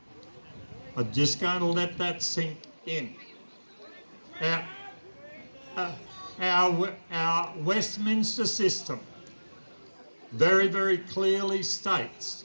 I'm just going to let that sink in. Our Westminster system very, very clearly states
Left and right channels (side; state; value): both; inverted; correlation -1.00